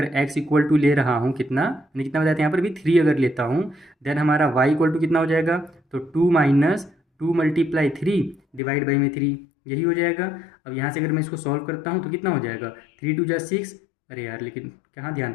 x इक्वल टू ले रहा हूँ, कितना यानी कितना बताते हैं यहाँ पर भी 3 अगर लेता हूँ, देन हमारा y इक्वल टू कितना हो जाएगा, तो 2 माइनस 2 मल्टीप्लाई 3 डिवाइड बाई में 3, यही हो जाएगा। अब यहाँ से अगर मैं इसको सॉल्व करता हूँ तो कितना हो जाएगा, 3 2 जा 6। अरे यार लेकिन कहाँ ध्यान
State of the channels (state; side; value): drops out; right; at 8.6 s